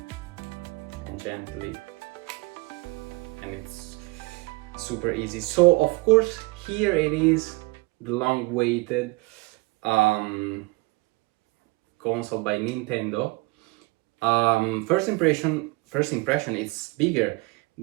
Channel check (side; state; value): left; quieter; 24.3 dB